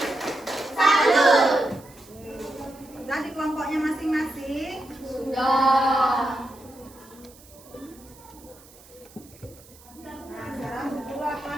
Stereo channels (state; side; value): noise; right; hiss, 24 dB below the sound